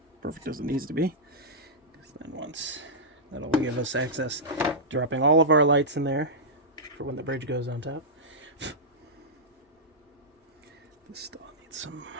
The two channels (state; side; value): normal; both; correlation -0.11